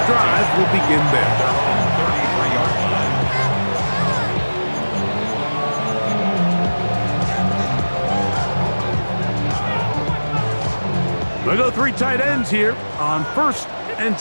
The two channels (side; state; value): both; inverted; correlation -1.00